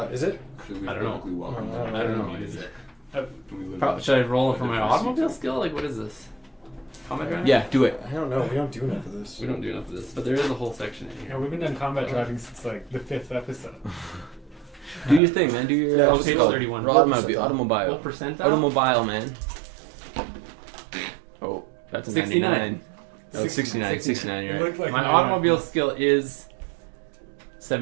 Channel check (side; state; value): left; drops out; at 15.2 s